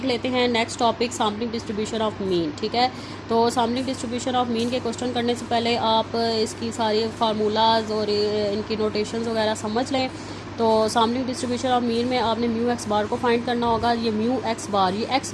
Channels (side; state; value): both; identical; correlation 1.00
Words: लेते हैं next topic, sampling distribution of mean. ठीक है, तो सैम्पलिंग डिस्ट्रीब्यूशन ऑफ मीन के क्वेश्चन करने से पहले आप इसकी सारी फार्मूलाज और इनकी नोटेशंस वगैरह समझ लें। तो सैम्पलिंग डिस्ट्रीब्यूशन ऑफ मीन में आपने म्यू एक्स बार को फाइंड करना होगा। ये म्यू एक्स बार, ये एक्स